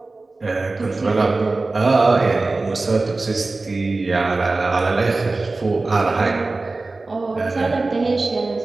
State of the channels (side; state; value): left; quieter; 3.4 dB